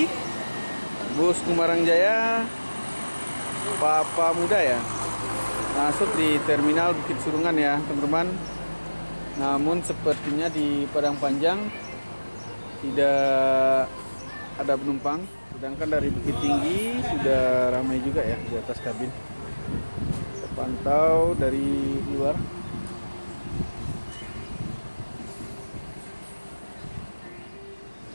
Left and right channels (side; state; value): both; inverted; correlation -1.00